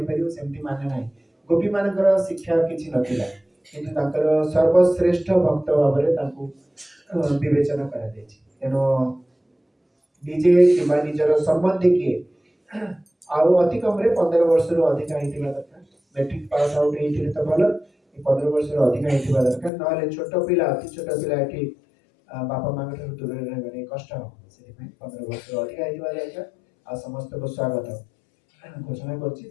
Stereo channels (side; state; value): right; drops out; at 19.7 s